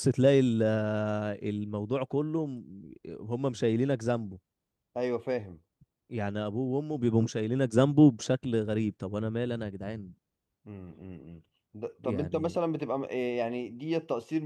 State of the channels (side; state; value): both; identical; correlation 1.00